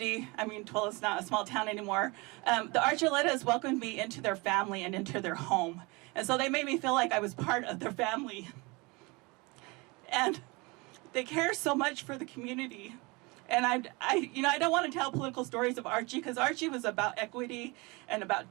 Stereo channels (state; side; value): quieter; left; 26.2 dB